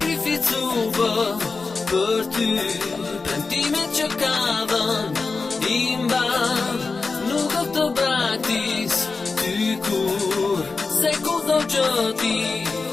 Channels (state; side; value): quieter; right; 4.2 dB